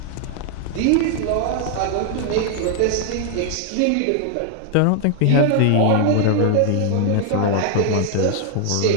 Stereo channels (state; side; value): different; both; correlation 0.00